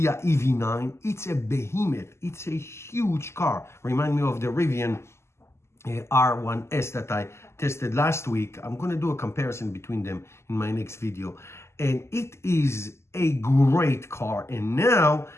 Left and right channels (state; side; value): late; right; 0.13 ms